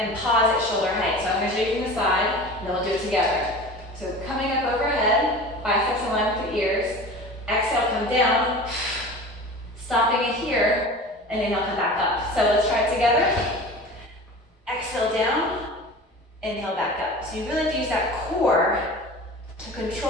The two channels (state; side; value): normal; both; correlation 0.37